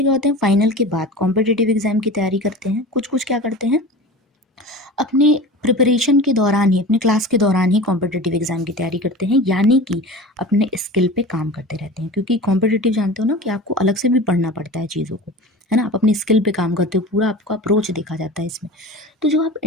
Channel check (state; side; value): normal; both; correlation 0.34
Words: क्या होते हैं, फाइनल के बाद कॉम्पिटिटिव एग्जाम की तैयारी करते हैं। कुछ कुछ क्या करते हैं, अपने प्रिपरेशन के दौरान ही, अपने क्लास के दौरान ही कॉम्पिटिटिव एग्जाम की तैयारी करते हैं, यानी कि अपने स्किल पे काम करते रहते हैं। क्योंकि कॉम्पिटिटिव जानते हो ना कि आपको अलग से भी पढ़ना पड़ता है चीज़ों को, है ना। आप अपनी स्किल पे काम करते हो, पूरा आपका अप्रोच देखा जाता है इसमें। तो जो आप